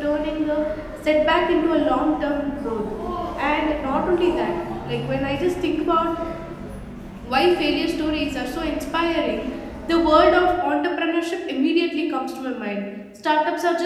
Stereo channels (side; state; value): both; identical; correlation 1.00